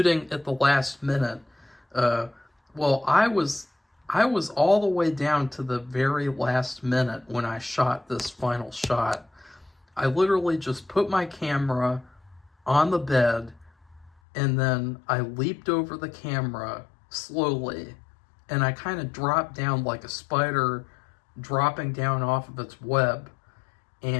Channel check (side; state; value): right; drops out; at 14.1 s